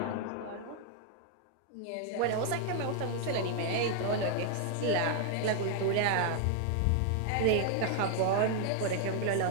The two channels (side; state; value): both; different; correlation 0.00